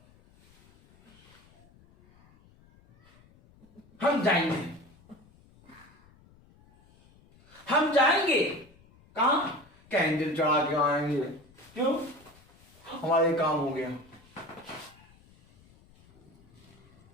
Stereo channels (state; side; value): noise; left; rumble, 28 dB below the sound